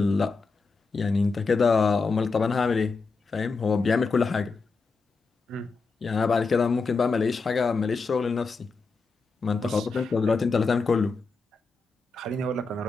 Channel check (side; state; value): right; quieter; 4.2 dB